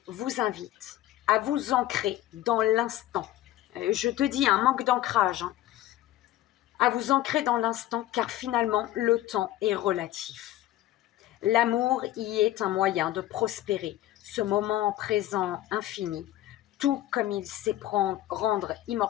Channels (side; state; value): right; quieter; 14.5 dB